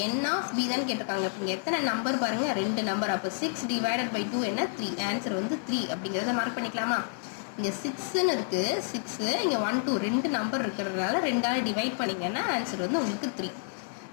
n of b தான் கேட்டிருக்காங்க. இப்போ இங்கே எத்தனை நம்பர் பாருங்கள், 2 நம்பர். அப்போ 6 divided by 2 என்ன, 3. ஆன்சர் வந்து 3 அப்படிங்கிறத மார்க் பண்ணிக்கலாமா. இங்கே 6ன்னு இருக்குது, 6, இங்கே 1 2 2 நம்பர் இருக்கிறதுனால 2ஆல் டிவைட் பண்ணிங்கன்னா ஆன்சர் வந்து உங்களுக்கு 3.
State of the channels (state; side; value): silent; right; 58 dB below the other